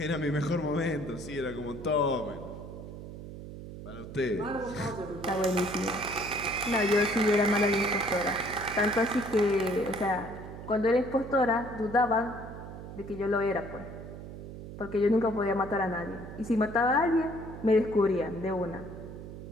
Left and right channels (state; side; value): noise; right; hum, 11 dB below the sound